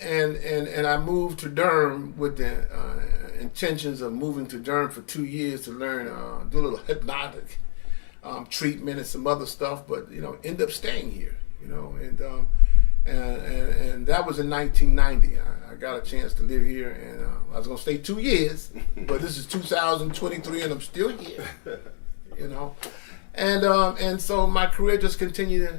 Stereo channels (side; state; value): right; silent; digital silence